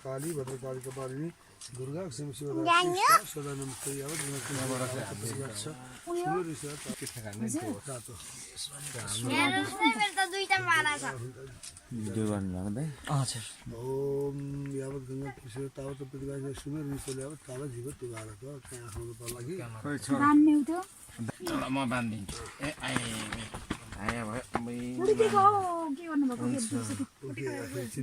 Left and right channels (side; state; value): both; identical; correlation 1.00